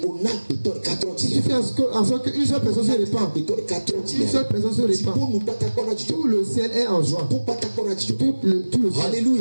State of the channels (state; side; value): inverted; both; correlation -1.00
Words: Si tu fais en sorte qu'une seule personne se répand, une seule personne se répand, tout le ciel est en joie. Tout le ciel.